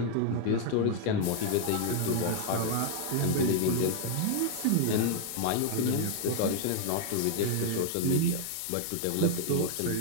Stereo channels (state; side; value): different; both; correlation 0.00